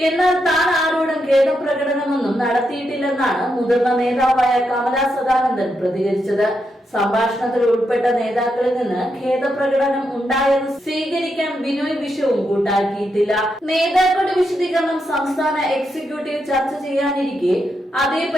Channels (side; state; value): both; normal; correlation 0.83